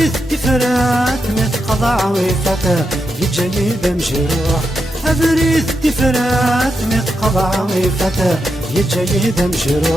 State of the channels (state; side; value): normal; both; correlation 0.86